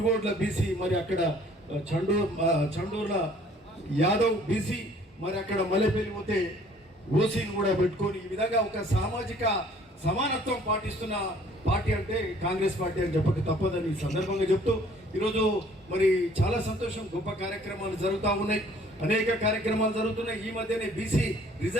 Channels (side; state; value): both; normal; correlation 0.57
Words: బీసీ, మరి అక్కడ చండూర్ల యాదవ్ బీసీ, మరి అక్కడ మల్లెపల్లి పోతే ఓసీని కూడా పెట్టుకొని ఈ విధంగా ఒక సామాజిక సమానత్వం పాటిస్తున్న పార్టీ అంటే కాంగ్రెస్ పార్టీ అని చెప్పక తప్పదని సందర్భంగా చెప్తూ ఈరోజు మరి చాలా సంతోషం. గొప్ప కార్యక్రమాలు జరుగుతూ ఉన్నాయి, అనేక కార్యక్రమాలు జరుగుతున్నాయి. ఈ మధ్యనే బీసీ